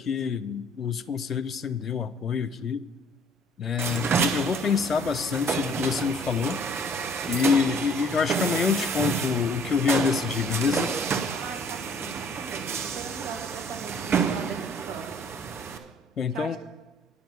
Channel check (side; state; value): both; normal; correlation 0.57